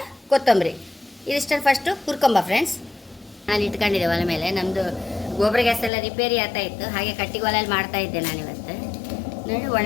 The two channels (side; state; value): right; drops out; at 5.9 s